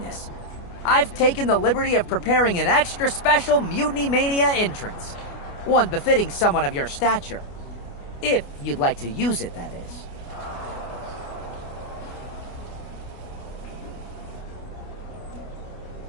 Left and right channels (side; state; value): right; late; 29 ms